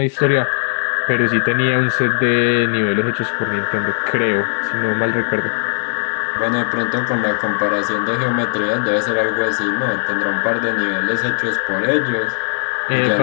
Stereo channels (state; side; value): silent; right; digital silence